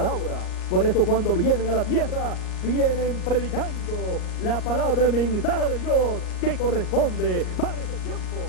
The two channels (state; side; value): late; right; 38 ms